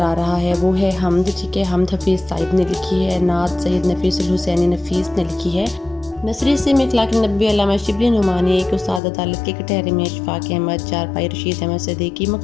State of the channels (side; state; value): right; drops out; at 9.0 s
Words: آ رہا ہے وہ ہے حمد، ٹھیک ہے۔ حمد حفیظ صاحب نے لکھی ہے، نعت سید نفیس الحسینی نفیس نے لکھی ہے۔ نثری سے میں اخلاق نبی علامہ شبلی نعمانی، ایک استاد عدالت کے کٹہرے میں اشفاق احمد، چارپائی رشید احمد صدیقی،